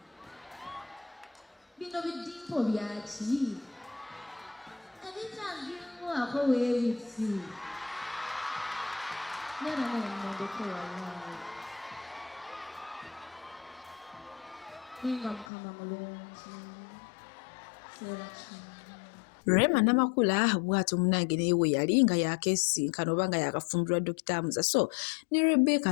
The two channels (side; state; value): right; drops out; at 15.5 s